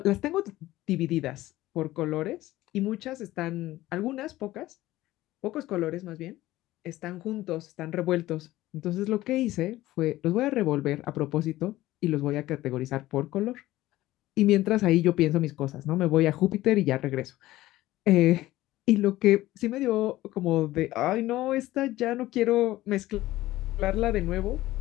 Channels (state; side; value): quieter; right; 16.4 dB